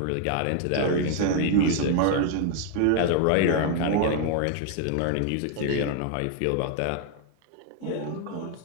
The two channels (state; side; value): different; both; correlation 0.00